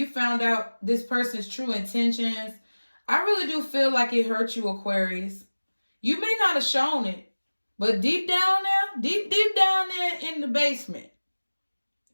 found out this person's true intentions, I really do feel like it hurt you, Aquarius. You may not have shown it, but deep down there, deep down there in the basement.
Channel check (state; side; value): inverted; both; correlation -1.00